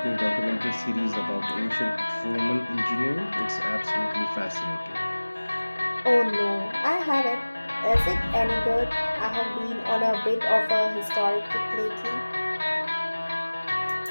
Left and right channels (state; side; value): inverted; both; correlation -1.00